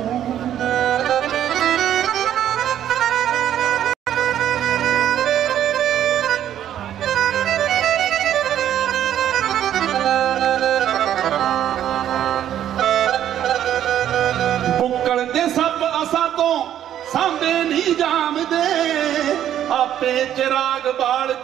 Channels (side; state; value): left; quieter; 10.9 dB